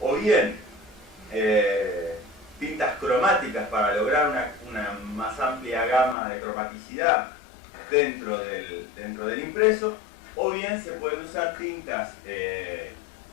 bien tintas cromáticas para lograr una más amplia gama de cromaticidad dentro del impreso, o bien se pueden usar tintas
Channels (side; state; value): right; drops out; at 6.2 s